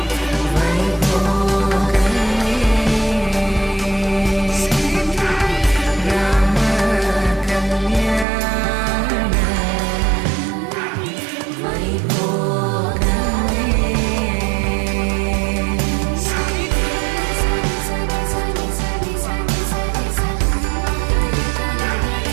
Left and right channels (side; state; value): left; drops out; at 8.2 s